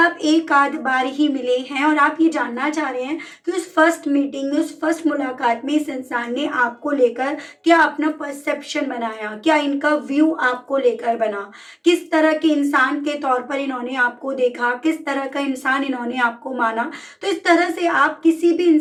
एक आध बार ही मिले हैं, और आप ये जानना चाह रहे हैं कि उस फर्स्ट मीटिंग में, उस फर्स्ट मुलाकात में इस इंसान ने आपको लेकर क्या अपना परसेप्शन बनाया, क्या इनका व्यू आपको लेकर बना, किस तरह के इंसान के तौर पर इन्होंने आपको देखा, किस तरह का इंसान इन्होंने आपको माना। तो इस तरह से आप किसी भी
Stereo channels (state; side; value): identical; both; correlation 1.00